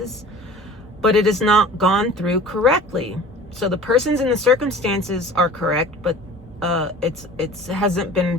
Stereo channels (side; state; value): both; normal; correlation 0.43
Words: but it is not gone through correctly. So the persons and the circumstances are correct, but it hasn't been